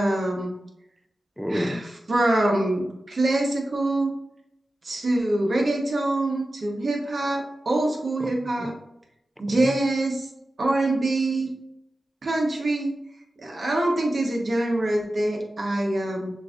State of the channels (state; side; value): normal; both; correlation 0.93